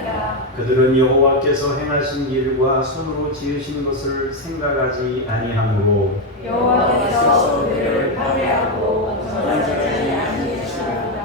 그들은 여호와께서 행하신 일과 손으로 지으신 것을 생각하지 아니하므로 여호와께서 그들을 파괴하고 전하지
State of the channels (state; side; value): normal; both; correlation 0.06